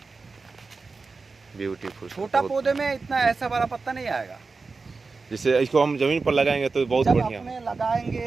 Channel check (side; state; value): left; quieter; 4.2 dB